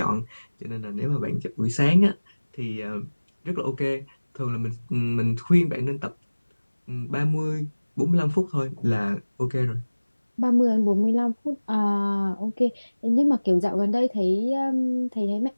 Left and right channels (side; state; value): both; inverted; correlation -1.00